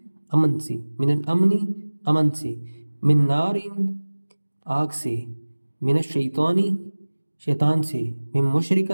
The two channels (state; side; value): inverted; both; correlation -1.00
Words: امن سے، من الامنی امن سے، من نارن آگ سے، من الشیطانی شیطان سے، من